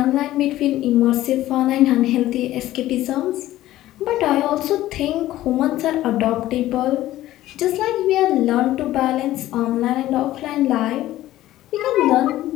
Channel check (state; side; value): quieter; right; 14.8 dB